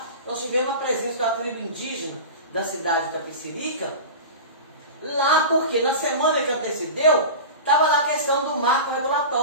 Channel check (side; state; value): both; inverted; correlation -0.30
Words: nós tivemos a presença da tribo indígena da cidade da Itapecerica, lá porque na semana que antecedeu, estava lá a questão do marco